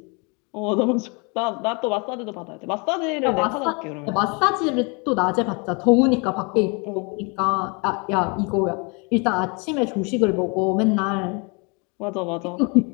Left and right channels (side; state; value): right; quieter; 32.0 dB